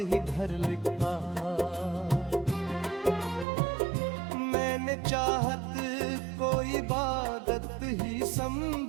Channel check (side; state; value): left; drops out; at 3.5 s